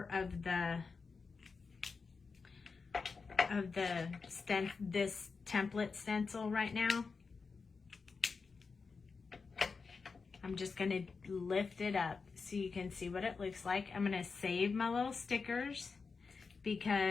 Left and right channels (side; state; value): right; quieter; 4.8 dB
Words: of this template stencil right now. I'm just going to lift it up so you can see what it looks like. I'm going to save my little stickers